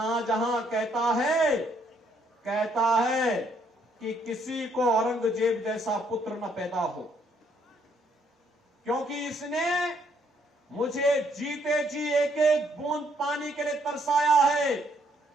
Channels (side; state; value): both; normal; correlation 0.69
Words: कहता है कि किसी को औरंगजेब जैसा पुत्र न पैदा हो, क्योंकि इसने मुझे जीते जी एक एक बूंद पानी के लिए तरसाया है।